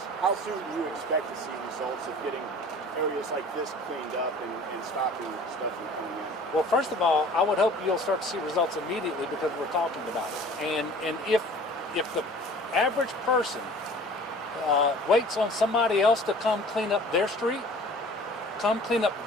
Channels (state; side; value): normal; both; correlation 0.46